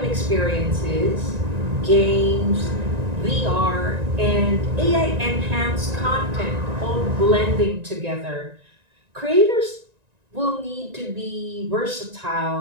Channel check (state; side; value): late; left; 1.9 ms